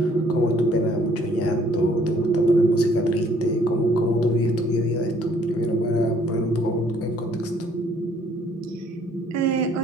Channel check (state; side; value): normal; both; correlation 0.61